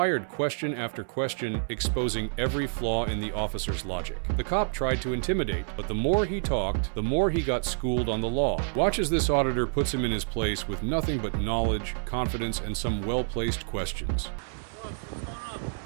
question after question, exposing every flaw in the officer's logic. The cop tried to intimidate, but the more he talked, the more he got schooled on the law. Watch as this auditor puts him in his place with nothing but knowledge, confidence, and some well-placed questions. What's going on?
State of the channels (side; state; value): left; silent; digital silence